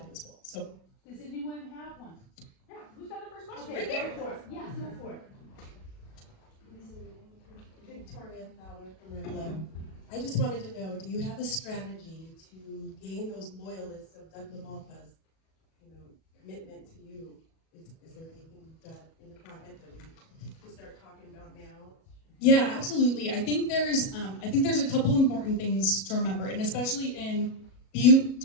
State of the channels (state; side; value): late; right; 37 ms